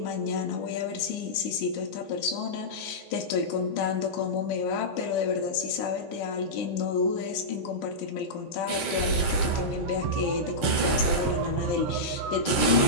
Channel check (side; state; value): both; normal; correlation -0.12